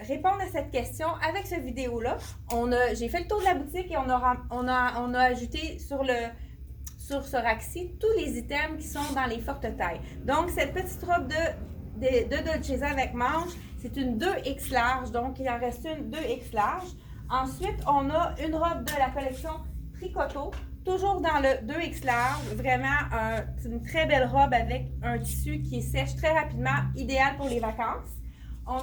répondre à cette question avec cette vidéo-là. J'ai fait le tour de la boutique et on a ajouté sur ce rack-ci tous les items qui sont dans les fortes tailles. Donc, cette petite robe de Dolcezza avec manche, c'est une 2X large, donc il en reste une 2X large. Ensuite, on a une robe de la collection Tricoto, toujours dans le 2X large, vraiment une très belle robe avec un tissu qui sèche très rapidement, idéal pour les vacances. On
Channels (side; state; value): both; identical; correlation 1.00